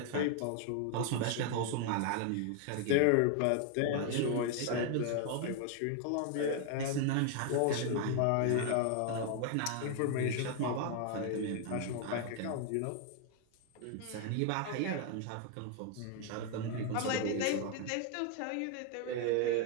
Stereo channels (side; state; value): both; different; correlation 0.00